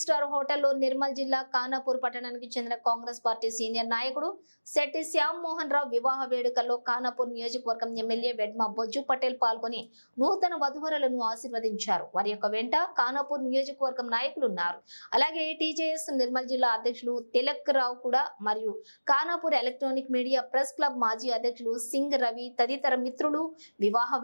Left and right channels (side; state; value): both; inverted; correlation -1.00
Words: స్టార్ హోటల్లో నిర్మల్ జిల్లా ఖానాపూర్ పట్టణానికి చెందిన కాంగ్రెస్ పార్టీ సీనియర్ నాయకుడు శెట్టి శ్యామ్ మోహన్ రావు వివాహ వేడుకల్లో ఖానాపూర్ నియోజకవర్గం ఎమ్మెల్యే వెడ్మ బొజ్జు పటేల్ పాల్గొని నూతన వధువరులను ఆశీర్వదించారు. వారి యొక్క వెంట ఖానాపూర్ నియోజకవర్గం నాయకులు ఉన్నారు. అలాగే టీజేఎస్ నిర్మల్ జిల్లా అధ్యక్షులు తిలక్ రావు కూడా మరియు Khanapur electronic media press club మాజీ అధ్యక్షులు సింగ్ రవి తదితర మిత్రులు వివాహ